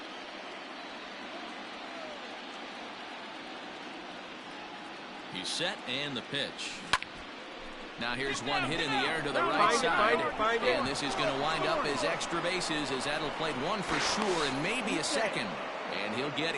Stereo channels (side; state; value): both; identical; correlation 1.00